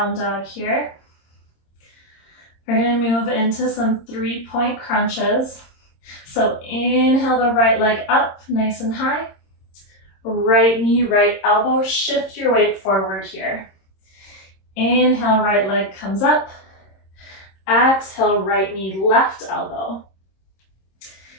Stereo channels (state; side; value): late; right; 26 ms